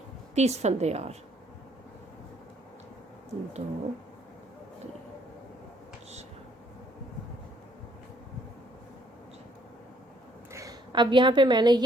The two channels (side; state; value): both; normal; correlation 0.65